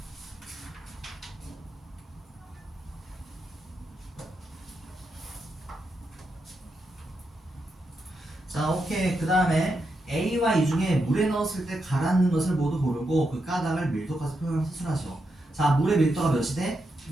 자, 오케이. 그 다음에 A와 E 중에 물에 넣었을 때 가라앉는 것을 모두 고르고 그 가닥을 밀도까지 표현해서 수술하시오. 자, 물의 밀도가 몇이 돼?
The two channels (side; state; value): both; normal; correlation 0.84